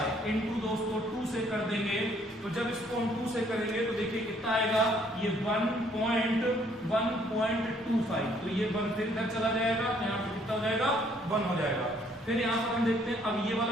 इंटू दोस्तों 2 से कर देंगे, तो जब इसको हम 2 से करेंगे तो देखिए कितना आएगा, ये 1.125, तो ये 1 फिर इधर चला जाएगा, यहाँ पे कितना हो जाएगा, 1 हो जाएगा। फिर यहाँ पर हम देखते हैं, अब ये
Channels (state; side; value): normal; both; correlation 0.64